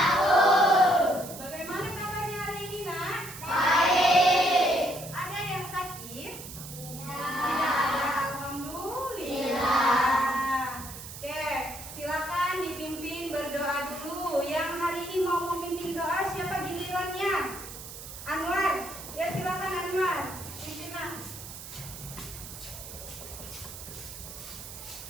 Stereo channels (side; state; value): right; noise; hiss, 12 dB below the sound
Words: Bagaimana kabarnya hari ini, Nak? Baik. Ada yang sakit? Iya. Tidak ada, alhamdulillah. Oke, silakan dipimpin berdoa dulu. Yang hari ini mau memimpin doa siapa gilirannya? Anwar. Ya silakan Anwar. Pimpin, Nak.